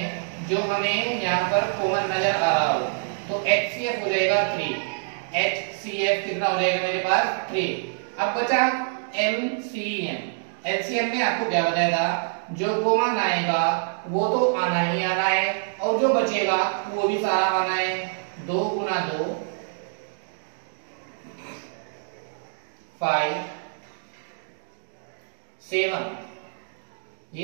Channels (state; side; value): silent; left; digital silence